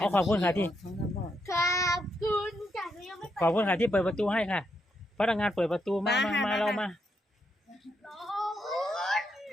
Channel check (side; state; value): both; normal; correlation 0.80